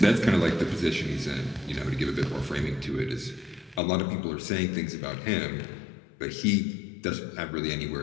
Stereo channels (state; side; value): drops out; right; at 3.8 s